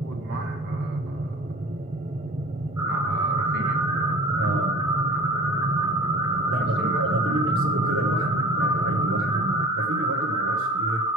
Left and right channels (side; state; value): both; normal; correlation 0.41